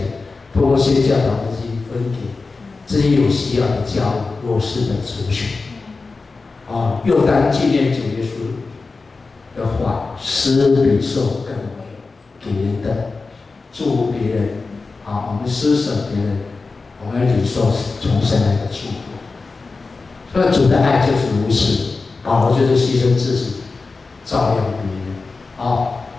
通过宣教导的去分给这些有需要的教会、弱势的族群。又当纪念主耶稣的话，施比受更为给人的祝福别人。我们施舍别人，我们领受从神来的祝福。所以主的爱就是如此，保罗就是牺牲自己，照亮别人。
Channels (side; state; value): right; quieter; 4.0 dB